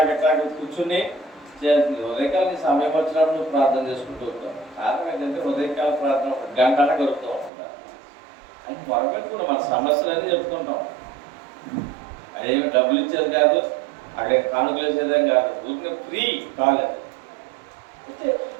కూర్చుని చేయాల్సింది. ఉదయకాలం సమయం వచ్చినప్పుడు నువ్వు ప్రార్థన చేసుకుంటూ ఉంటావు. కారణం ఏంటంటే ఉదయకాల ప్రార్థన 1 గంట గడుపుతూ ఉంటుందా అని మొరపెట్టుకున్నాం. మన సమస్యలన్నీ చెప్పుకుంటాం. అదేమి డబ్బులు ఇచ్చేది కాదు, అక్కడ కానుకలు వేసేదేం కాదు, ఊరికే ఫ్రీ కాలేదు. అయితే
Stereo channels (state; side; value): drops out; left; at 7.5 s